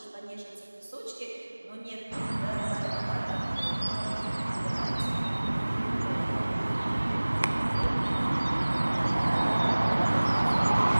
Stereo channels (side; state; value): both; inverted; correlation -1.00